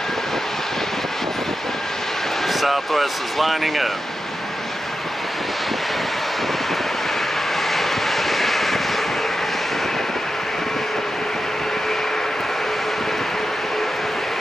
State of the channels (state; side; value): normal; both; correlation 0.90